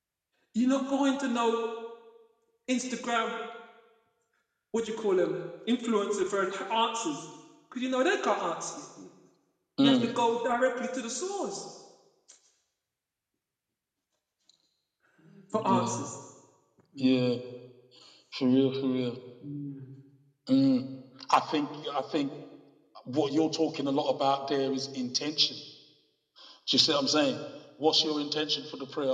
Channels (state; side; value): identical; both; correlation 1.00